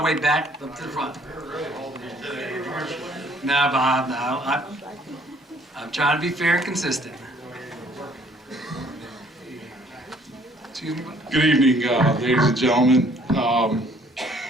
way back up to the front. No, Bob, no. I'm trying to be fair and consistent. Excuse me. Good evening, ladies and gentlemen.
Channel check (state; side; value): normal; both; correlation 0.60